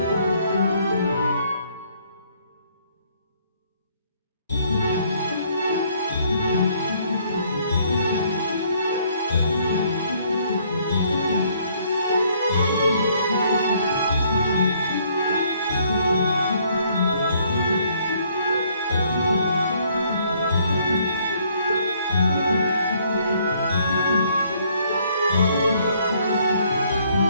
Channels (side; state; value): both; inverted; correlation -0.65